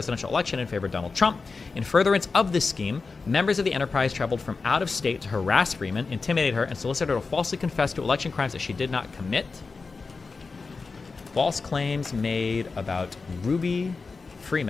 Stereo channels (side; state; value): right; quieter; 4.3 dB